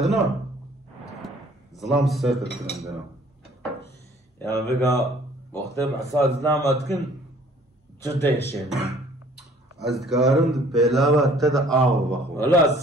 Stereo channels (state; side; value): normal; both; correlation 0.56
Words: ظلام الساتر كنا عندنا. يعني بقى وقت مع صار ظلام أتكن جدا يشين. أذكارن بلاوا تدا آو بخو. والله